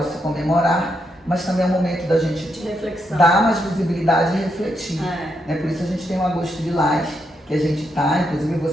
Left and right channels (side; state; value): both; normal; correlation 0.80